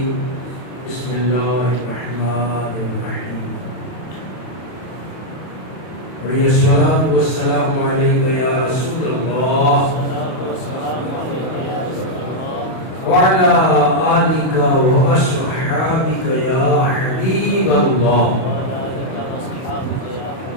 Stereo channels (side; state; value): right; late; 31 ms